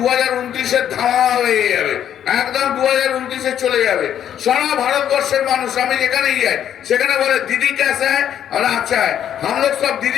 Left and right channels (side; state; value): right; quieter; 10.0 dB